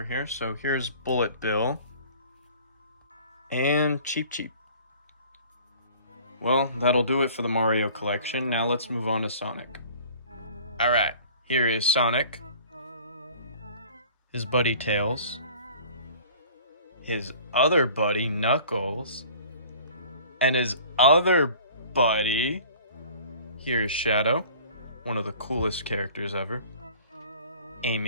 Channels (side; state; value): both; inverted; correlation -0.48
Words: here. So here's Bullet Bill. And Cheep Cheep. Well, that'll do it for the Mario collection. Now let's move on to Sonic. Alright, here is Sonic. His buddy Tails. His other buddy Knuckles. And his other buddy... Here is Shadow, one of the coolest characters ever.